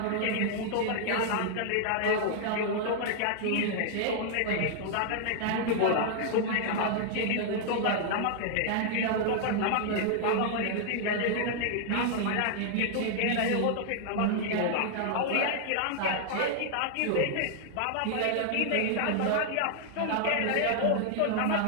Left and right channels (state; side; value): different; both; correlation 0.00